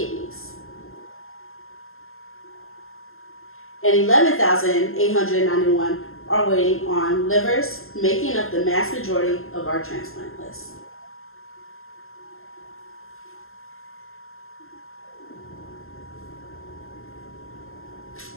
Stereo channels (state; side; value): late; right; 0.61 ms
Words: And 11,891 are waiting on livers, making up the mass majority of our transplant list.